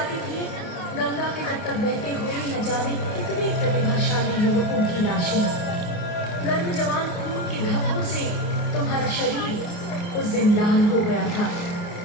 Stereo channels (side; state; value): right; late; 28 ms